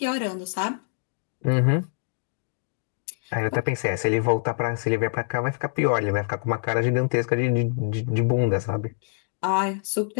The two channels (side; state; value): right; silent; 58 dB below the other